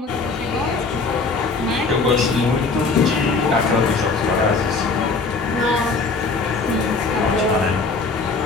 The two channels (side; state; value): right; quieter; 4.1 dB